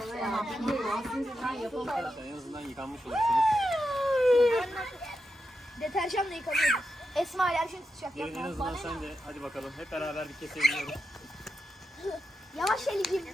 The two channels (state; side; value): normal; both; correlation 0.87